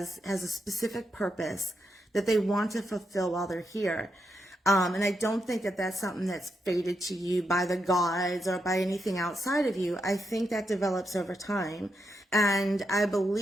a specific purpose that they want to fulfill while they're here. And I don't think that that's something that's fated to you by the gods or by anything outside of you. I think that develops over time. And I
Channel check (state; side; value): normal; both; correlation 0.83